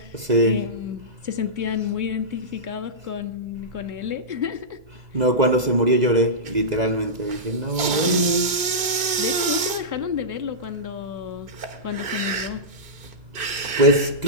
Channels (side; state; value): left; late; 2.5 ms